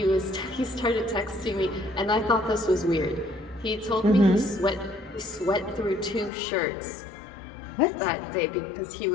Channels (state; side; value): drops out; right; at 6.3 s